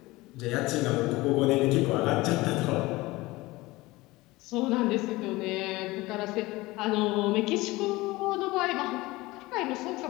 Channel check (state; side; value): quieter; right; 20.5 dB